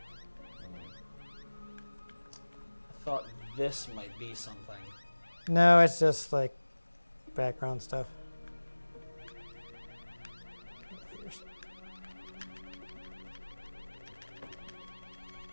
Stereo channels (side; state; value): both; inverted; correlation -1.00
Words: I thought this might be something. No, it's just like background stuff.